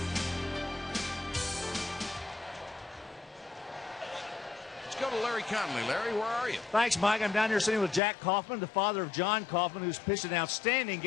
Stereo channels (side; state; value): right; drops out; at 8.0 s